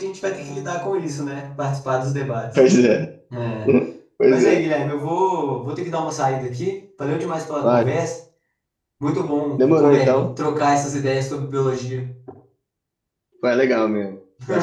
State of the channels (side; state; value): both; identical; correlation 1.00